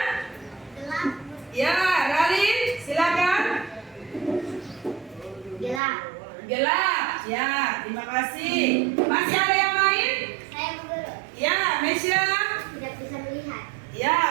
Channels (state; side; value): drops out; left; at 5.8 s